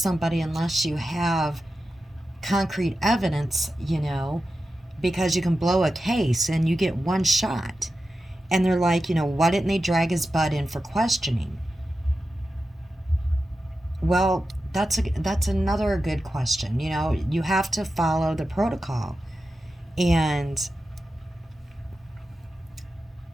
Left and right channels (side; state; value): both; normal; correlation 0.91